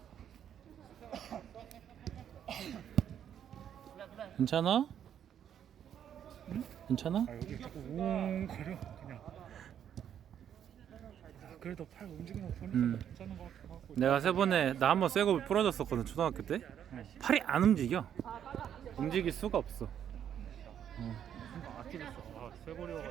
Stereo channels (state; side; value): quieter; left; 9.4 dB